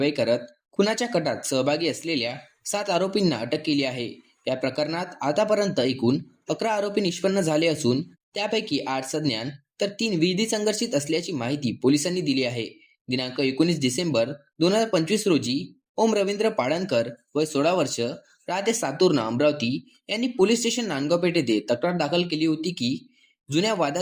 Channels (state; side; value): identical; both; correlation 1.00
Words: करत खुनाच्या कटात सहभागी असलेल्या 7 आरोपींना अटक केली आहे। या प्रकरणात आतापर्यंत एकूण 11 आरोपी निष्पन्न झाले असून त्यापैकी 8 सज्ञान तर 3 विधी संघर्षित असल्याची माहिती पोलिसांनी दिली आहे। दिनांक 19 डिसेंबर 2025 रोजी ओम रवींद्र पाळणकर वय 16 वर्ष राहते सातूर्ण अमरावती यांनी पोलीस स्टेशन नांदगाव पेठ येथे तक्रार दाखल केली होती की जुन्या